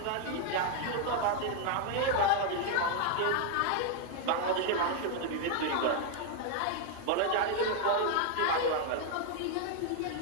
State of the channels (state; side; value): different; both; correlation 0.00